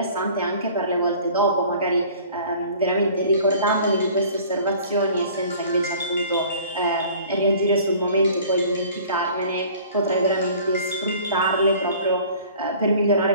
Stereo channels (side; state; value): both; inverted; correlation -0.48